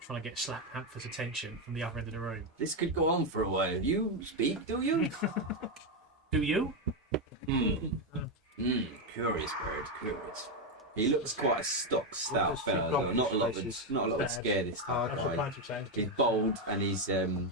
trying to get Slack Panther's attention from the other end of the room. This could go on for a while. You speak, do you? Do you? Curious bird, curious. He looks quite a stock, stout fella, though. Not a lot of scare this time. He's bold and he's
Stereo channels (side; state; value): both; normal; correlation 0.06